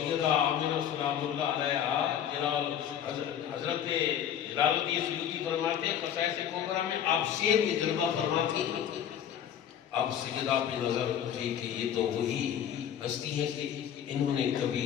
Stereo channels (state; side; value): quieter; right; 9.5 dB